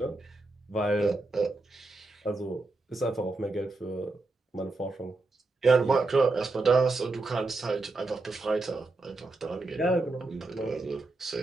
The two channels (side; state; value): left; quieter; 3.3 dB